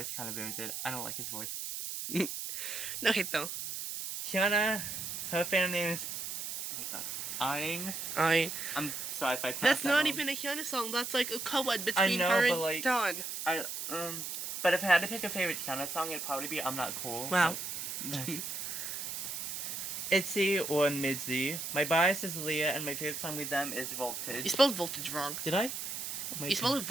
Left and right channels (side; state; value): right; noise; hiss, 5 dB below the sound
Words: kind of ruins it. I don't like his voice. Okay, so. Hyuna, her fan name is... Oh my god. Aang. I'm sorry if I pronounced That's that not wrong. even a Hyuna song. That's like a co-ed between know, her but, and like, Dawn. But if I had to pick a favorite Hyuna song, it'd probably be I'm Not Cool. Wow. ITZY or MIDZY. My bias is Leah, and my favorite song with them is You Voltage. spelled voltage wrong. Did I? Oh my You spelled